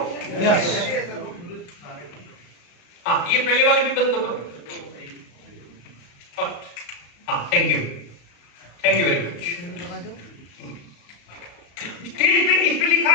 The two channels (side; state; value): right; late; 34 ms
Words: हाँ, ये पहले वाली भी बंद कर दो। हाँ, thank you very much. Stage पे इस पे लिखा